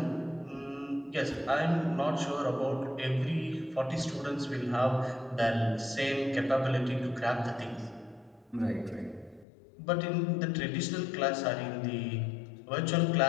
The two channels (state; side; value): drops out; right; at 9.5 s